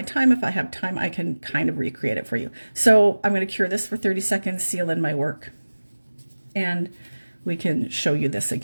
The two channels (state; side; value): inverted; both; correlation -1.00